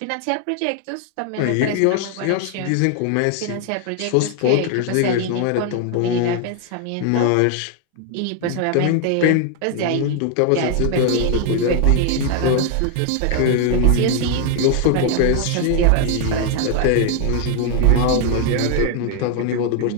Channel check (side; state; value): both; different; correlation 0.00